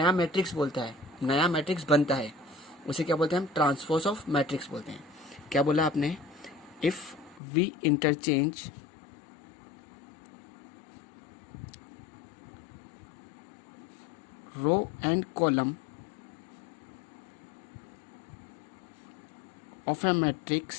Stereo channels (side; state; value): right; drops out; at 7.4 s